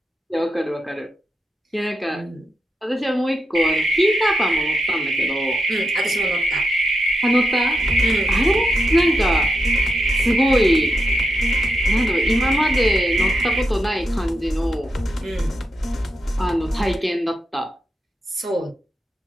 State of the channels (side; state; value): both; normal; correlation 0.84